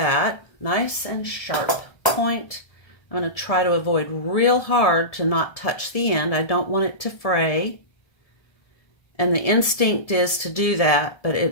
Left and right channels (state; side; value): late; right; 1.7 ms